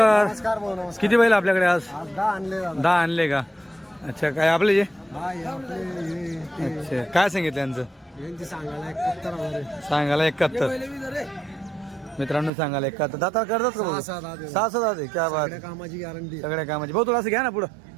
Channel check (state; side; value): drops out; left; at 12.5 s